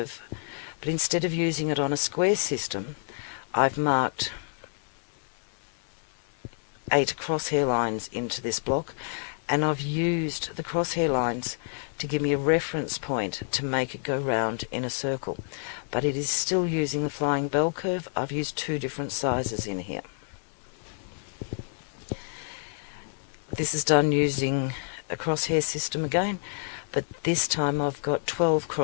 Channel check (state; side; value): silent; right; digital silence